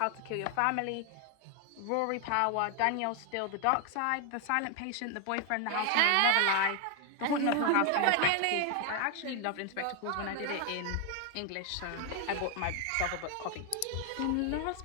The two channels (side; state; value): both; different; correlation 0.00